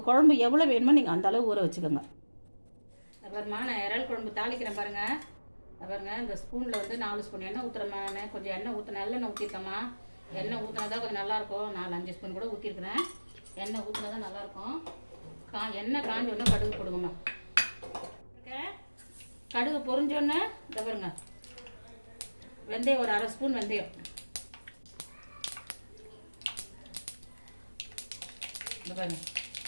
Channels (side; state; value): both; inverted; correlation -1.00